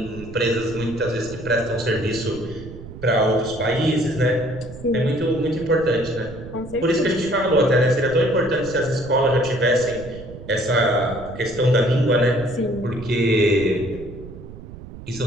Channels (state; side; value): noise; right; rumble, 14 dB below the sound